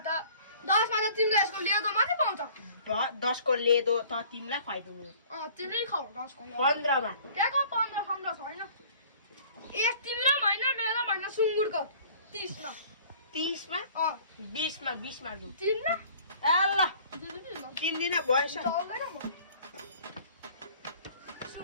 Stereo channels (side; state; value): both; inverted; correlation -0.51